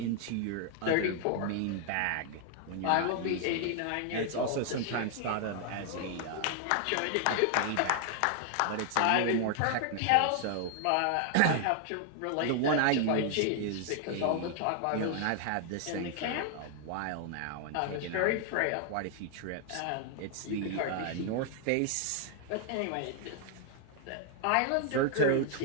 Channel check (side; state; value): both; different; correlation 0.00